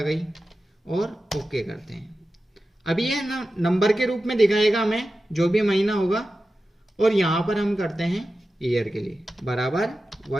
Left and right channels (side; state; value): both; normal; correlation 0.93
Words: गई और ओके करते हैं। अभी ये नंबर के रूप में दिखाएगा हमें जो भी महीना होगा, और यहां पर हम करते हैं ईयर के लिए बराबर